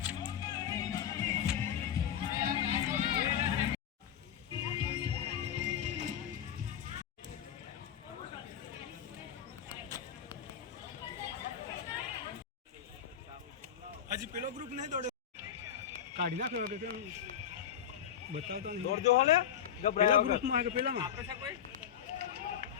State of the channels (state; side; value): quieter; right; 9.2 dB